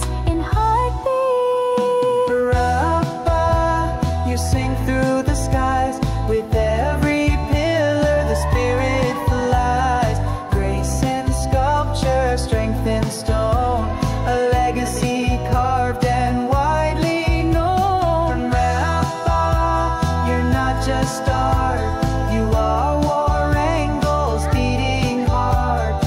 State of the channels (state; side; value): identical; both; correlation 1.00